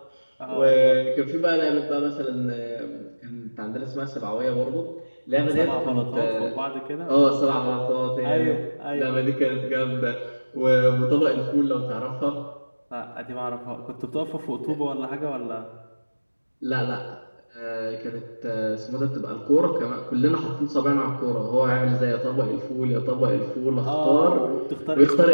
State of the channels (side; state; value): both; inverted; correlation -1.00